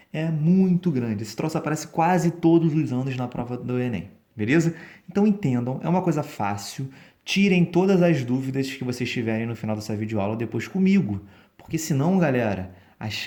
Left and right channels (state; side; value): identical; both; correlation 1.00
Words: é muito grande. Esse troço aparece quase todos os anos na prova do Enem, beleza? Então entendam, é uma coisa fácil. Tirem todas as dúvidas que vocês tiverem no final dessa videoaula depois comigo, porque senão, galera, a